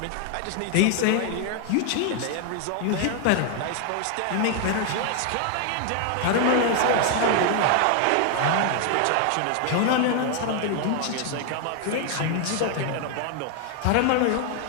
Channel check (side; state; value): both; different; correlation 0.00